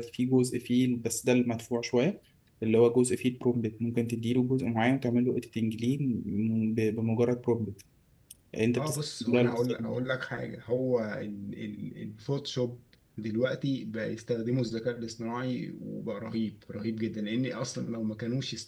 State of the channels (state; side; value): identical; both; correlation 1.00